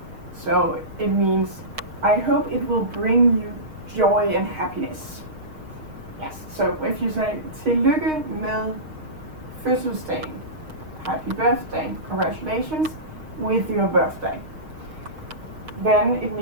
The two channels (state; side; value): late; left; 6.5 ms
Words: So it means, I hope it will bring you joy and happiness. Yes, so if you say tillykke med fødselsdagen, happy birthday, congratulations with your birthday, then it